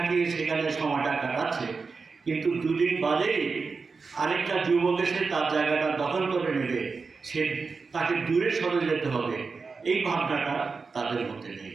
সেখানে সময়টা কাটাচ্ছে, কিন্তু দুদিন বাদেই আরেকটা যুবক এসে তার জায়গাটা দখল করে নেবে, তাকে দূরে সরে যেতে হবে, এই ভাবনাটা তাদের মধ্যে নেই।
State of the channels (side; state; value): left; quieter; 4.6 dB